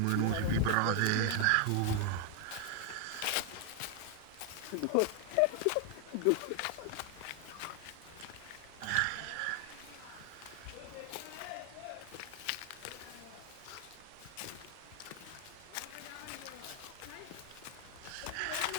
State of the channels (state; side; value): different; both; correlation 0.00